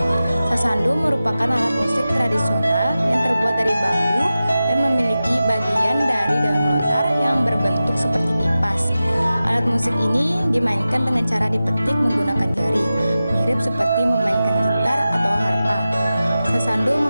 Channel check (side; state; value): both; inverted; correlation -0.94